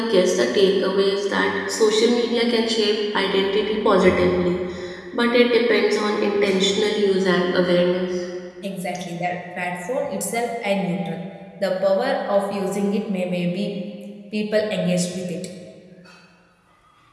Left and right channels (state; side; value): identical; both; correlation 1.00